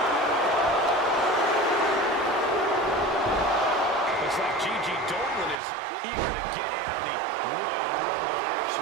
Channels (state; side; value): drops out; left; at 5.6 s